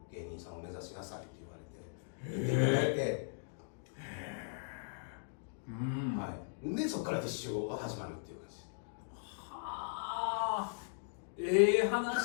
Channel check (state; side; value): silent; right; digital silence